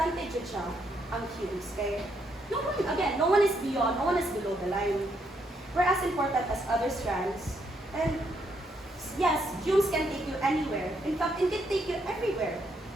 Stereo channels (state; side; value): normal; both; correlation 0.75